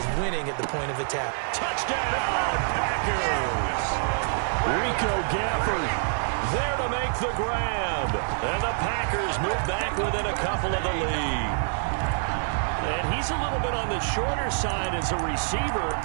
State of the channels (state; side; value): silent; left; 61 dB below the other